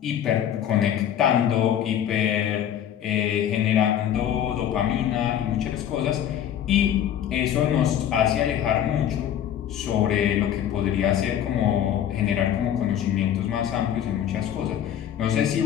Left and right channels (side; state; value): right; quieter; 10.1 dB